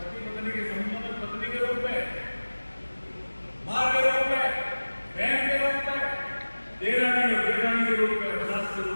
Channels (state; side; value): inverted; both; correlation -1.00